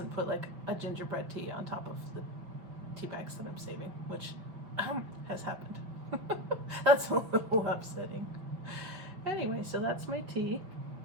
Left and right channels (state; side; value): late; left; 5.8 ms